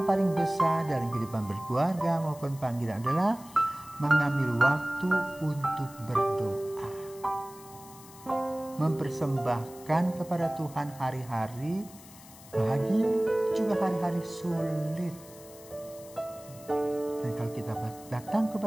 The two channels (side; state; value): left; noise; hiss, 20 dB below the sound